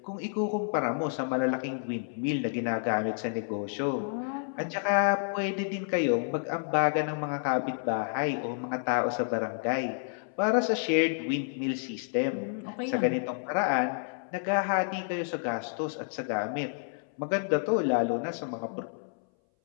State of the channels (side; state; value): right; silent; 58 dB below the other